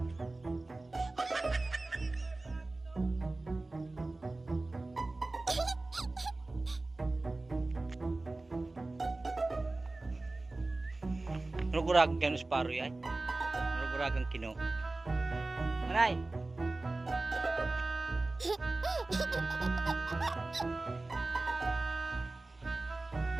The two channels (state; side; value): quieter; left; 3.1 dB